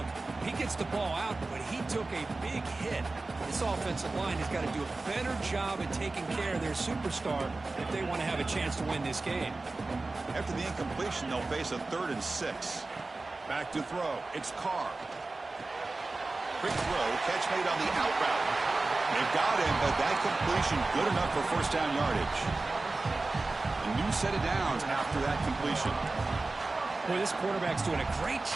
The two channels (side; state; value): left; quieter; 3.3 dB